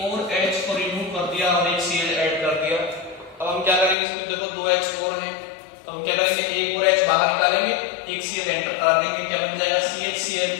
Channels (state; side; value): drops out; right; at 4.0 s